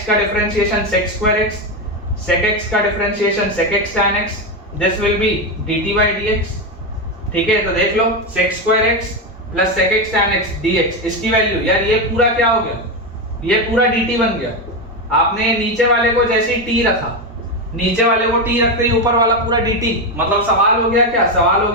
का differentiation sec square x, sec x का differentiation sec x tan x, this will be dt by dx। ठीक है, तो देख लो sec square x plus sec x tan x dx, इसकी value यार ये पूरा क्या हो गया, ये पूरा dt बन गया, आपने नीचे वाले को जैसे ही टी रखा, नीचे वाले को टी रखते ही ऊपर वाला पूरा dt, मतलब सवाल हो गया क्या, सवाल हो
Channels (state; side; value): normal; both; correlation 0.11